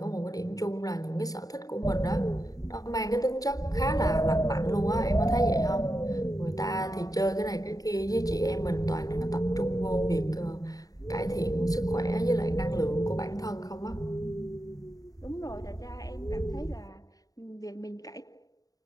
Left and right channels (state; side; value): late; right; 0.18 ms